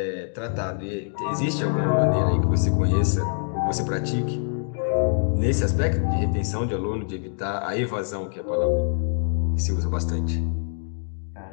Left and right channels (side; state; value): right; silent; digital silence